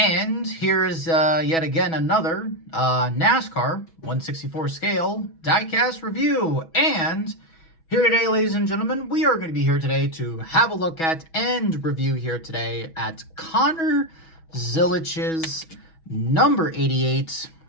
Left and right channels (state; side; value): late; right; 6.1 ms